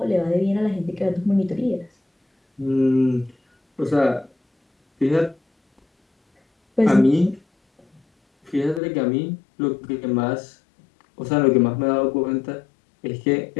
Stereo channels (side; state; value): right; drops out; at 8.8 s